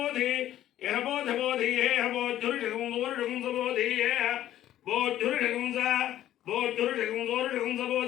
యహ బోధ బోధి హేహ బోధురుషగం వరుషగం బోధి హేహ బోధురుషగం బోధురుషగం వరుషగం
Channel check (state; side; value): quieter; right; 12.7 dB